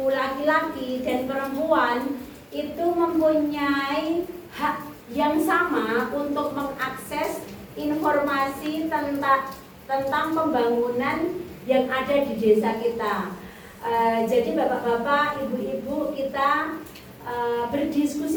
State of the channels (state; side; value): identical; both; correlation 1.00